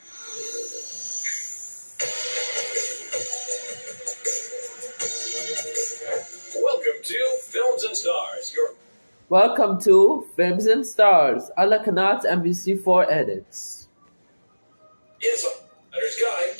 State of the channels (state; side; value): inverted; both; correlation -1.00